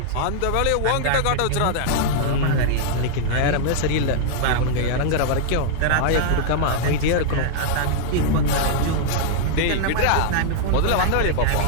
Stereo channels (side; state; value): both; different; correlation -0.01